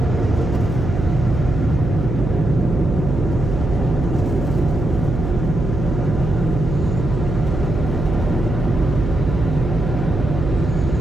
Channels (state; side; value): noise; right; hum, 3 dB below the sound